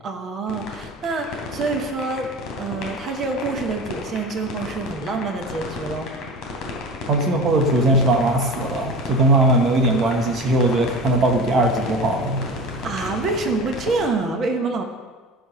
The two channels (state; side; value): normal; both; correlation 0.33